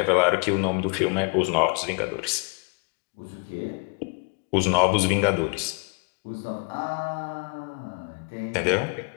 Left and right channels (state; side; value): quieter; right; 35.2 dB